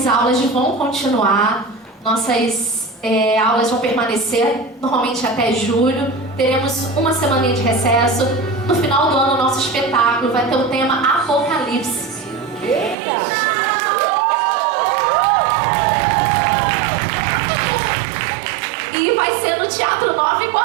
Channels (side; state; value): left; drops out; at 13.0 s